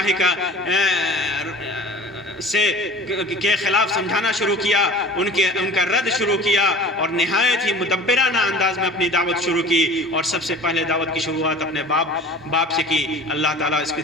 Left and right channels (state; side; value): normal; both; correlation 0.42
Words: کا کے خلاف سمجھانا شروع کیا، ان کا رد شروع کیا، اور نہایت ہی مدبرانہ انداز میں اپنی دعوت شروع کی، اور سب سے پہلے دعوت کی شروعات اپنے باپ سے کی۔ اللہ تعالیٰ اس کی